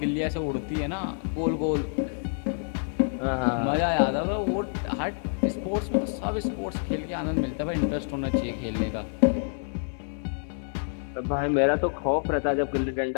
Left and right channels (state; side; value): silent; right; digital silence